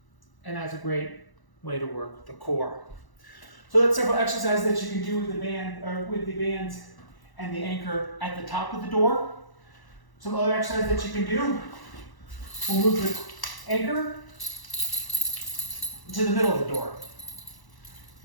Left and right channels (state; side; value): late; right; 1.0 ms